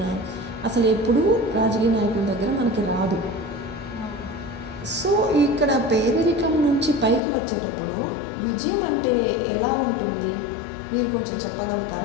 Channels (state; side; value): drops out; right; at 7.2 s